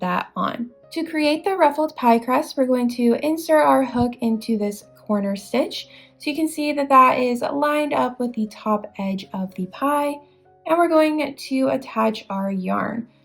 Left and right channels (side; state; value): both; identical; correlation 1.00